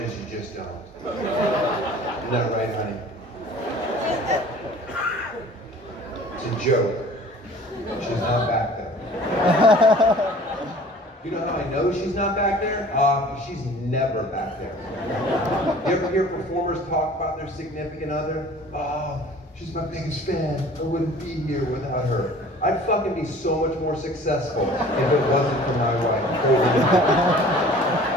you just don't. Isn't that right, honey? It's a joke. She's not back there. You know how I know she's not back there? She's never back there. You ever hear performers talk about their significant other? She's my biggest fan. I wouldn't be here without her. I'd fucking be so much more successful if it wasn't for my wife.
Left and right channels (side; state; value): both; normal; correlation 0.47